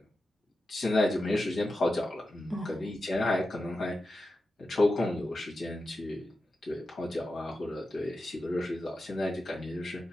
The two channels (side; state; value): both; normal; correlation 0.91